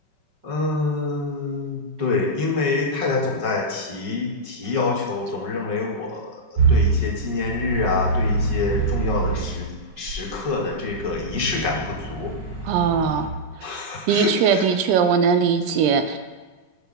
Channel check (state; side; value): late; left; 5.3 ms